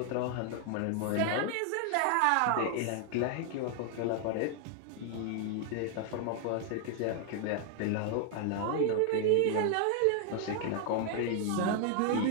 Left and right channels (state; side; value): different; both; correlation 0.00